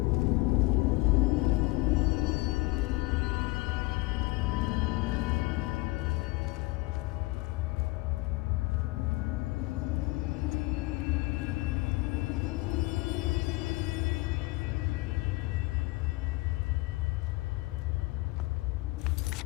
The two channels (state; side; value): quieter; right; 21.9 dB